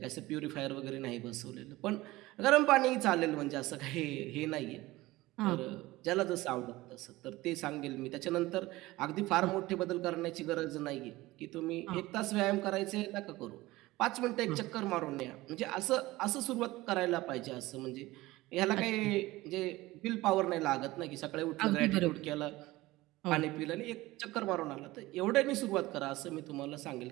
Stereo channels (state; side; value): quieter; left; 18.9 dB